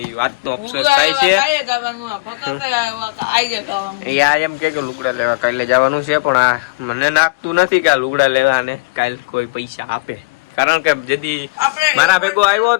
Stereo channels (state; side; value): quieter; right; 26.3 dB